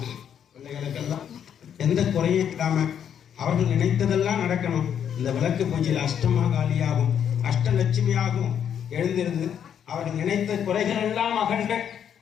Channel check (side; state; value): right; quieter; 8.7 dB